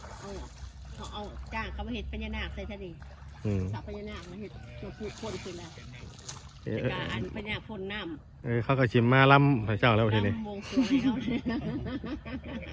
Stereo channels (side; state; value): both; identical; correlation 1.00